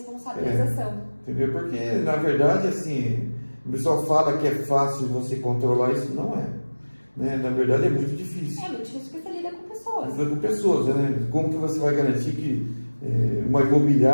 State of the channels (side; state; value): both; inverted; correlation -1.00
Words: Entendeu? Porque, na verdade, assim, o pessoal fala que é fácil você controlar, isso não é. Né? Na verdade, é muito difícil. É muito difícil porque você lida com pessoas. Lida com pessoas, né? Como que você vai garantir que uma